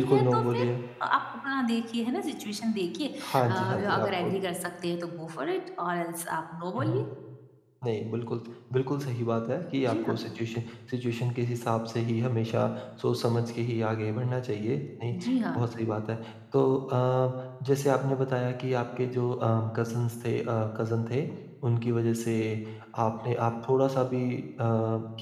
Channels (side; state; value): both; identical; correlation 1.00